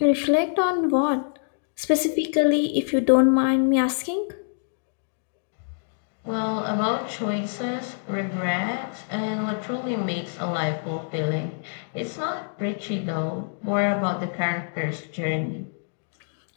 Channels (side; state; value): right; silent; digital silence